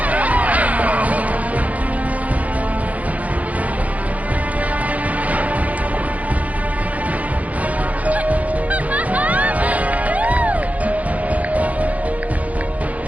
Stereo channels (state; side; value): late; left; 0.070 ms